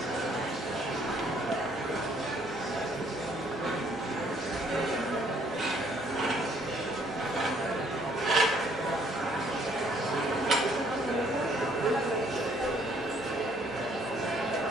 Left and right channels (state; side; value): normal; both; correlation 0.64